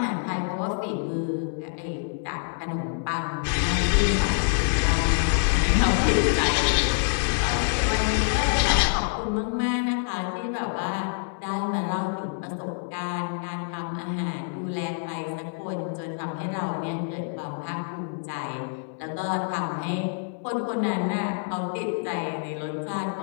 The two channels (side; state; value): right; silent; digital silence